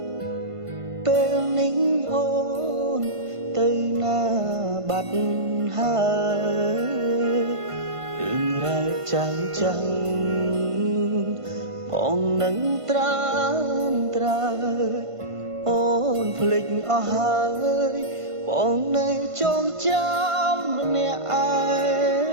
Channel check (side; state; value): left; late; 1.5 ms